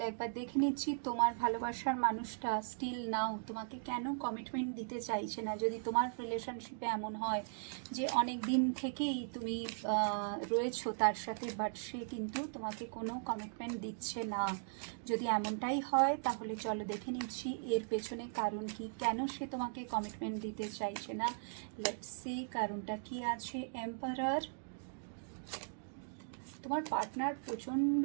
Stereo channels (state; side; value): silent; left; digital silence